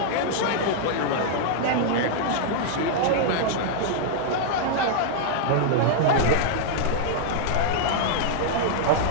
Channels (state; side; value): different; both; correlation -0.01